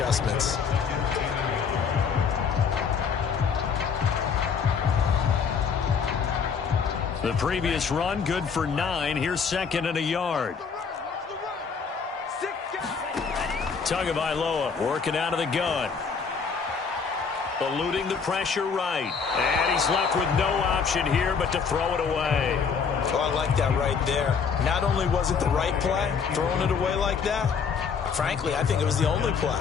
The previous run, good for 9. Here's second and a yard. Tagovailoa working out of the gun. Eluding the pressure right. And he's left with no option here but to throw it away. Oh, I like that right there. Not only was it the right play, throwing it away like that, frankly, I think it was the only play.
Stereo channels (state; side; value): quieter; right; 6.0 dB